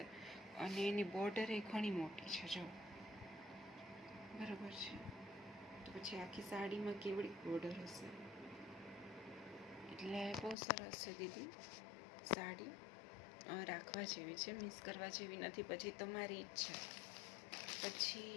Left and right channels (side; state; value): right; drops out; at 10.6 s